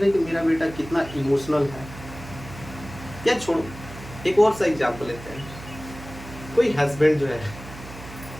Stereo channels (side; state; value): right; noise; hum, 15 dB below the sound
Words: कि मेरा बेटा कितना इमोशनल है। या छोड़ो, एक और सा एग्जाम्पल लेते हैं। कोई हस्बैंड जो है